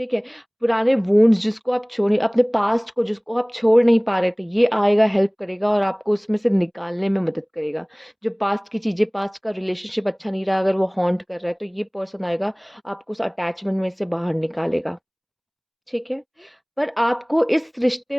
है? पुराने वुंड्स जिसको आप छोड़े, अपने पास्ट को जिसको आप छोड़ नहीं पा रहे थे, ये आएगा, हेल्प करेगा और आपको उसमें से निकालने में मदद करेगा। जो पास्ट की चीज़ें, पास्ट का रिलेशनशिप अच्छा नहीं रहा, अगर वो हॉन्ट कर रहा है, तो ये पर्सन आएगा, आपको उस अटैचमेंट में से बाहर निकालेगा। ठीक है? पर आपको इस रिश्ते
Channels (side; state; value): both; identical; correlation 1.00